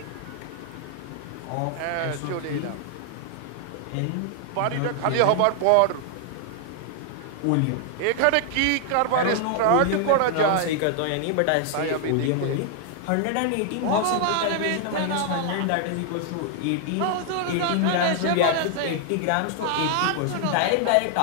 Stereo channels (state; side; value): different; both; correlation 0.00